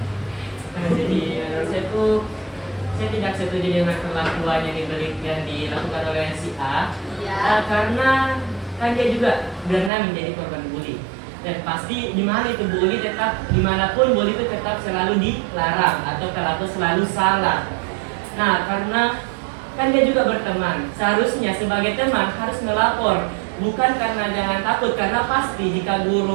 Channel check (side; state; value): left; drops out; at 9.9 s